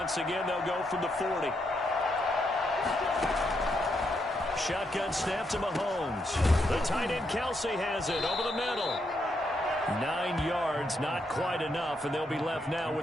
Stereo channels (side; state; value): both; normal; correlation 0.79